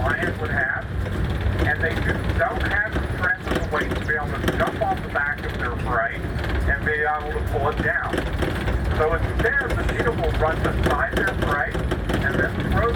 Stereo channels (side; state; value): both; identical; correlation 1.00